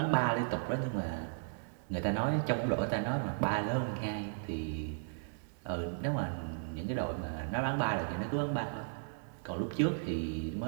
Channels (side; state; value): left; silent; digital silence